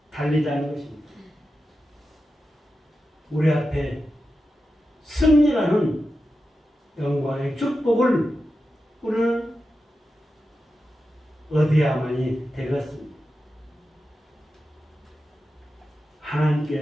달리자는 것입니다. 우리 앞에 승리라는 영광의 축복을 우리는 얻어야만이 되겠습니다.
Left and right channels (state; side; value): normal; both; correlation 0.91